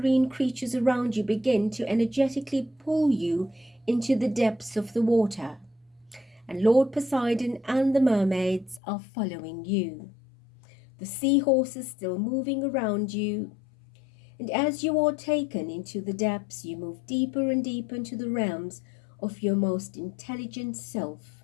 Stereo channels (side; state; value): right; drops out; at 8.8 s